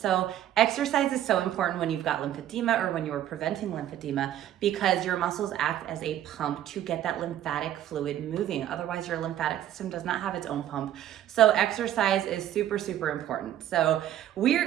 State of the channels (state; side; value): quieter; left; 11.8 dB